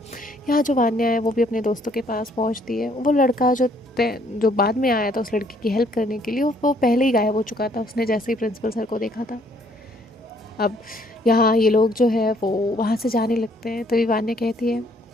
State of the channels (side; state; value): both; normal; correlation 0.65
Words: यहाँ जो वान्या है वो भी अपने दोस्तों के पास पहुँचती है। वो लड़का जो बाद में आया था उस लड़की की हेल्प करने के लिए, वो पहले ही गायब हो चुका था, उसने जैसे ही प्रिंसिपल सर को देखा था। अब यहाँ ये लोग जो है वो वहाँ से जाने लगते हैं। तभी वान्या कहती है,